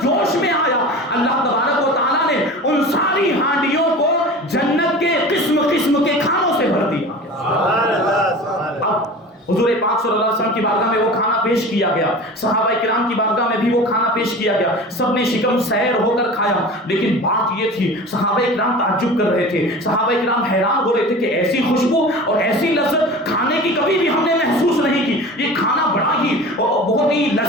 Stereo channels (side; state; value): both; normal; correlation 0.36